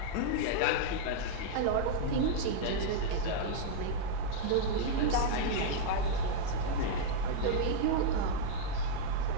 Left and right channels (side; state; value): both; different; correlation -0.01